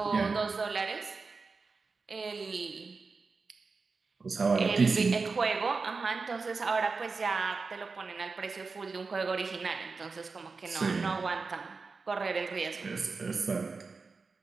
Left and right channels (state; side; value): quieter; left; 4.4 dB